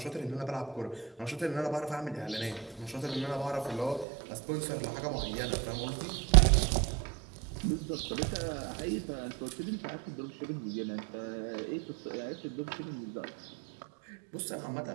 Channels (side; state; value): left; drops out; at 4.0 s